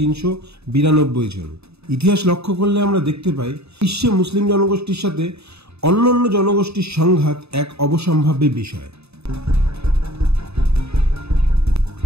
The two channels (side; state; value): left; late; 0.79 ms